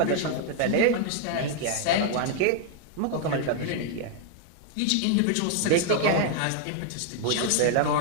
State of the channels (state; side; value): different; both; correlation 0.00